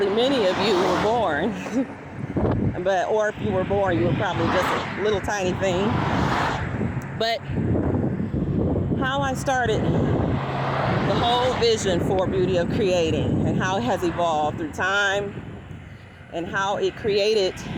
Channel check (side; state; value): both; identical; correlation 1.00